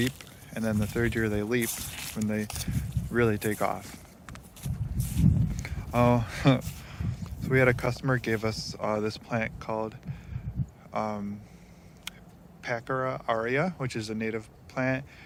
And then the third year, they leap when they really take off. So we had a customer gave us this plant called Pachyra aurea, which is a native plant.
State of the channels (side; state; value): both; identical; correlation 1.00